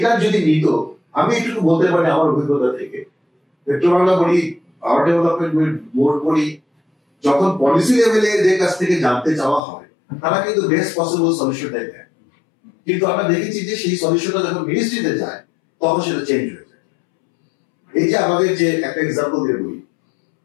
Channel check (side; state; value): right; drops out; at 9.6 s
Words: যদি নিত, আমি একটু বলতে পারি আমার অভিজ্ঞতা থেকে, পেট্রোবাংলা বলি, পাওয়ার ডেভেলপমেন্ট বোর্ড বলি, যখন পলিসি লেভেলে এদের কাছ থেকে জানতে চাওয়া হয়, তারা কিন্তু বেস্ট পসিবল সলিউশনটাই দেয়, কিন্তু আমরা দেখেছি যে সেই সলিউশনটা যখন মিনিস্ট্রিতে যায় তখন সেটা চেঞ্জ হয়ে যায়। এই যে আমাদের যে একটা এক্সাম্পল দিয়ে বলি,